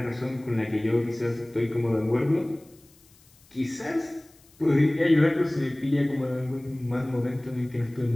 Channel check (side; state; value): left; noise; hiss, 29 dB below the sound